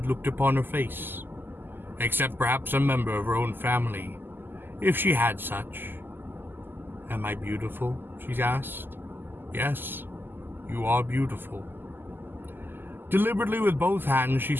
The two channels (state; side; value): late; left; 0.094 ms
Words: looked upon her face, except perhaps a member of her own family, if she had such. "Am I beautiful?" she asked. "Yes, you are beautiful." Deliberately with both hands she